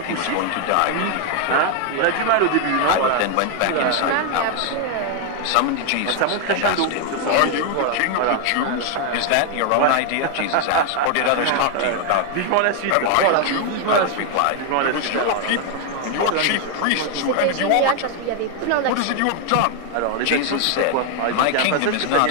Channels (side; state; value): both; different; correlation 0.00